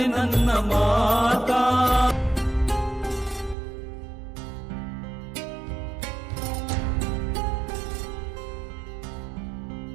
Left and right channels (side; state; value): left; drops out; at 3.6 s